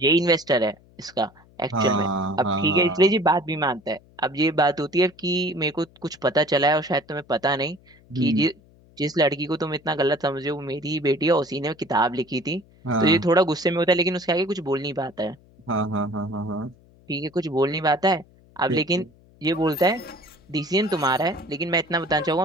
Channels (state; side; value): noise; left; hum, 28 dB below the sound